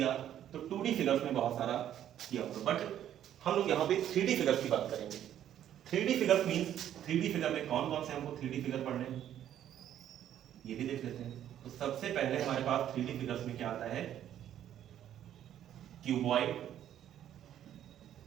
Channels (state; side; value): quieter; left; 10.9 dB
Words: तो 2D फिगर्स में बहुत सारा किया होगा, बट हम लोग यहाँ पे 3D फिगर्स की बात करेंगे। 3D figures means 3D figure में कौन कौन से हमको 3D फिगर पढ़ने हैं ये भी देख लेते हैं। तो सबसे पहले हमारे पास 3D फिगर्स में क्या आता है, क्यूबॉइड।